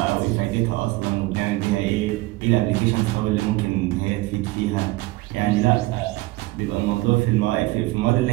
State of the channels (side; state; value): left; quieter; 20.2 dB